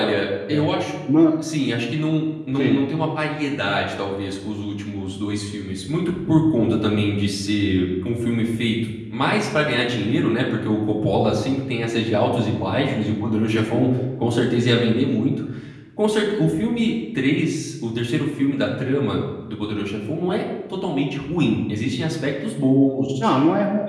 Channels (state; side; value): identical; both; correlation 1.00